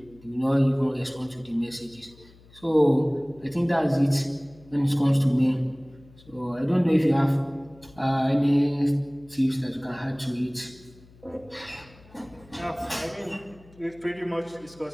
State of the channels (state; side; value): noise; left; hum, 25 dB below the sound